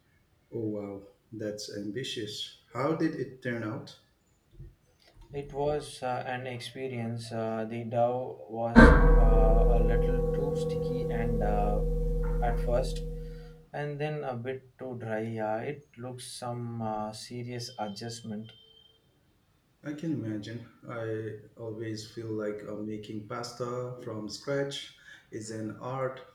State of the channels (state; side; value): identical; both; correlation 1.00